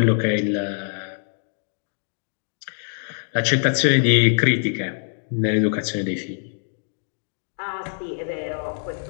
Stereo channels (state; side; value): silent; right; digital silence